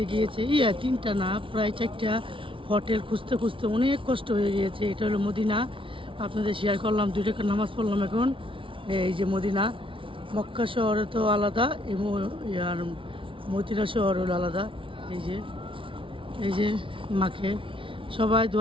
গিয়েছে, 3টা না, প্রায় 4টা। হোটেল খুঁজতে খুঁজতে অনেক কষ্ট হয়ে গিয়েছে। এটা হলো মদিনা, আপনাদের শেয়ার করলাম। 2 টাকার নামাজ পড়লাম এখন। এই যে মদিনা, মক্কা শহরে তো আলাদা, আর মদিনা শহর হলো আলাদা। এই যে মাকে সবাই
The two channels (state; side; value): late; left; 0.25 ms